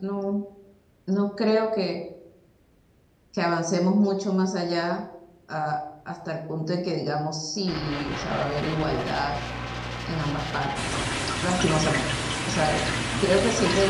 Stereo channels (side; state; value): both; identical; correlation 1.00